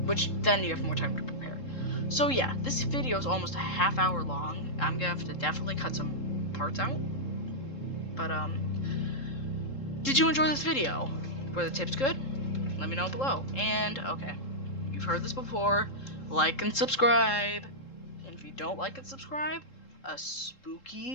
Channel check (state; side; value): late; right; 3.7 ms